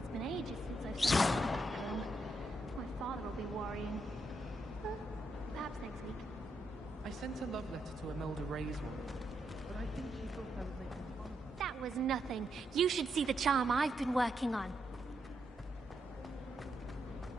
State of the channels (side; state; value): both; normal; correlation 0.81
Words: been ages since I've seen a broom. My father will be worrying. Perhaps next week. I sent a love letter to Imelda Ray's one, but I think she thought I was making fun of her. That was nothing. You should see the charm I've been working on.